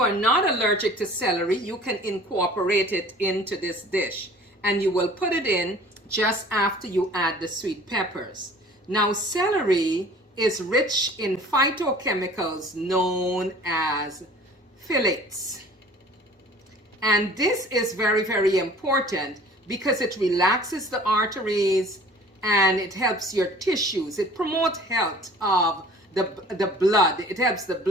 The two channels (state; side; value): normal; both; correlation 0.48